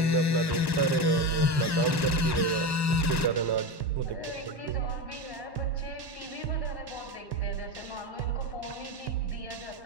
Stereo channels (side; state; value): left; late; 1.1 ms